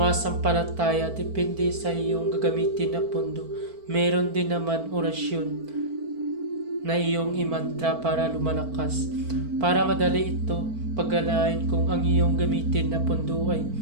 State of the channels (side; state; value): left; late; 4.5 ms